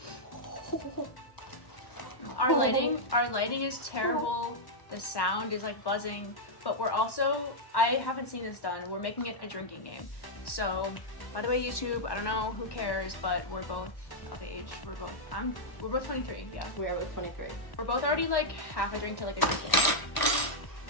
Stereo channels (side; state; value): right; late; 1.2 ms